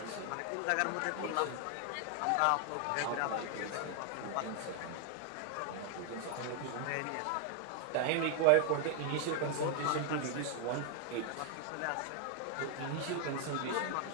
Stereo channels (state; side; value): different; both; correlation 0.00